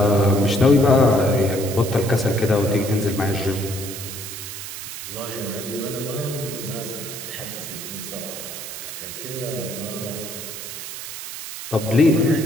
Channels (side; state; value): right; noise; hiss, 9 dB below the sound